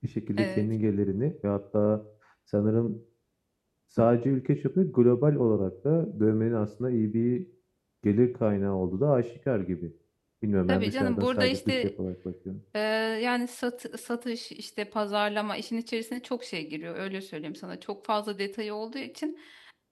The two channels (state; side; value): identical; both; correlation 1.00